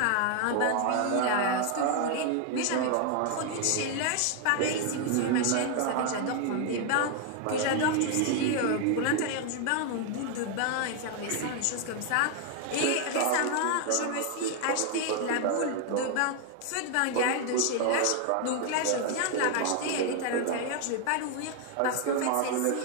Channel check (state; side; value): different; both; correlation 0.00